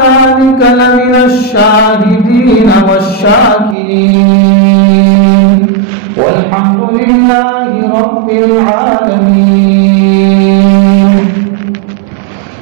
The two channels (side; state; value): left; drops out; at 3.8 s